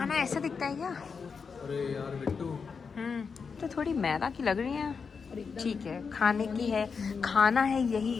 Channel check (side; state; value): right; quieter; 5.5 dB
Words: ऐसा दिखता है क्या? अरे यार बिट्टू, तो थोड़ी मैदा की लग रही है। ठीक है, खाने की है, खाना है, यही